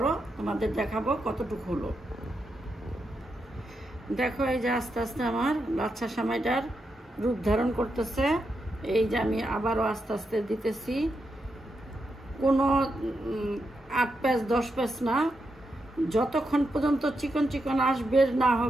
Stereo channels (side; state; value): both; normal; correlation 0.84